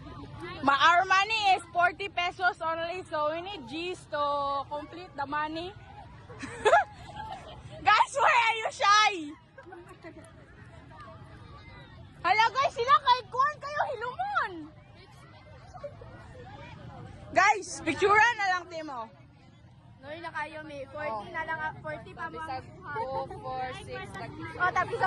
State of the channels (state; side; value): identical; both; correlation 1.00